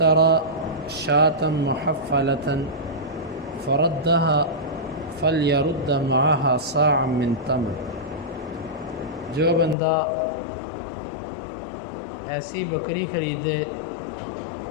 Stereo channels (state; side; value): drops out; right; at 9.8 s